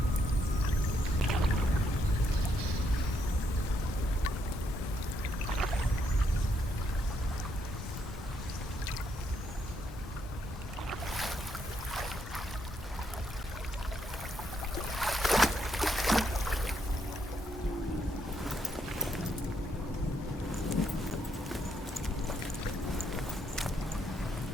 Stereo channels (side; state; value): both; normal; correlation 0.76